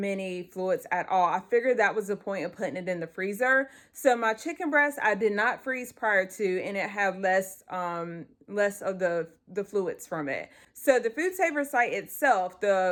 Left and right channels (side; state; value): both; identical; correlation 1.00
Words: fluids at all. I figured that was the point of putting it in the freezer. So my chicken breast, I did not freeze prior to, and it had less of the fluids from it. So the FoodSaver site itself,